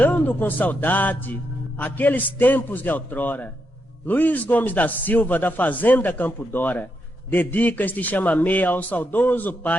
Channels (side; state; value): both; normal; correlation 0.82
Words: com saudade aqueles tempos de outrora, Luiz Gomes da Silva, da Fazenda Campo Dora, dedica este chamamé ao saudoso